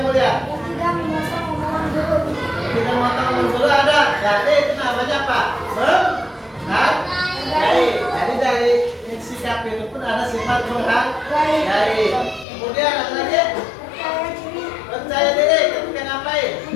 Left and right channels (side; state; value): right; drops out; at 12.5 s